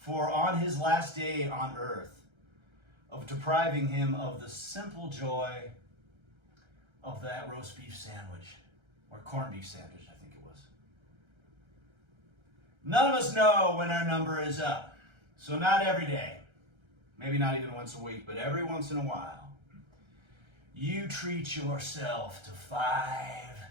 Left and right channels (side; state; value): left; late; 1.3 ms